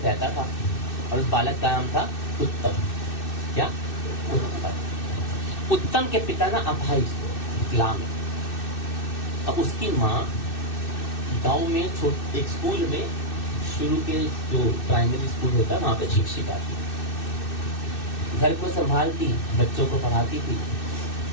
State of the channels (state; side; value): late; right; 2.6 ms